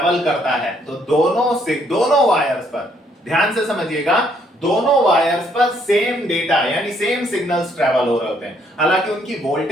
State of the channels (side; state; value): both; normal; correlation 0.69